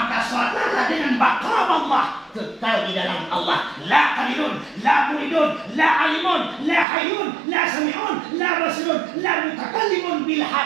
salatlah dengan bakal Allah, kekal di dalam Allah. La qalilun, la muridun, la alimun, la hayyun, la sami'un, la basirun, la mutakallimun bil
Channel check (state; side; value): drops out; left; at 6.9 s